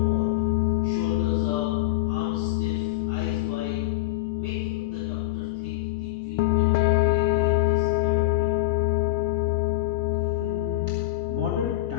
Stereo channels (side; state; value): right; quieter; 17.5 dB